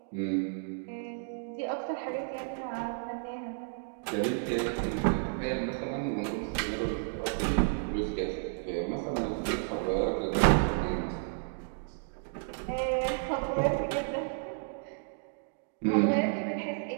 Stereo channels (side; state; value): left; silent; digital silence